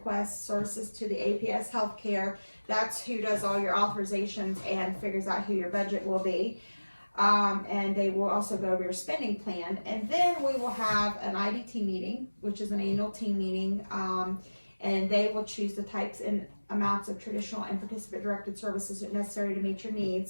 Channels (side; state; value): both; inverted; correlation -1.00